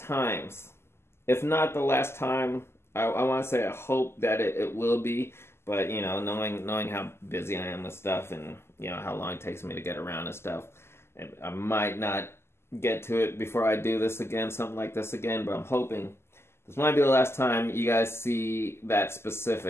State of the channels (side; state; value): right; late; 0.12 ms